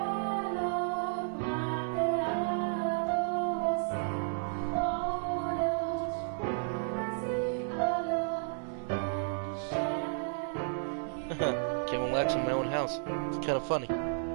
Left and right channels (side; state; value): left; silent; 56 dB below the other